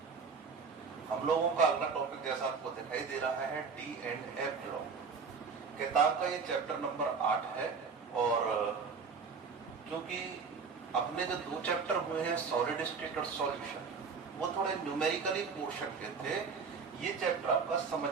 हम लोगों का अगला टॉपिक जैसा आपको दिखाई दे रहा है डी एंड एफ ब्लॉक। किताब का ये चैप्टर नंबर 8 है और क्योंकि अपने जो 2 चैप्टर हुए हैं सॉलिड स्टेट और सॉल्यूशन, वो थोड़े न्यूमेरिकली पोर्शन के थे। ये चैप्टर आपका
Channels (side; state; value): left; quieter; 5.3 dB